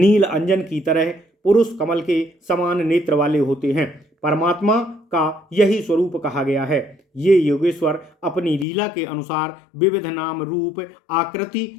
अंजन की तरह, पुरुष कमल के समान नेत्र वाले होते हैं। परमात्मा का यही स्वरूप कहा गया है। ये योगेश्वर अपनी लीला के अनुसार विविध नाम, रूप, आकृति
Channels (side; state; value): right; drops out; at 8.7 s